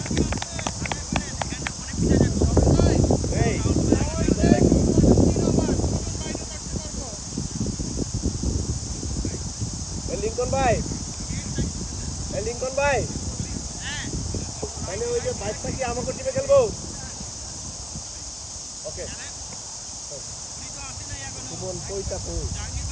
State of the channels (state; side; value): noise; left; hiss, 20 dB below the sound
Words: লিঙ্কন ভাই তাহলে ওই যে বাইকটা কি আমাকে টিপে খেলবো ওকে সুমন কইটা কই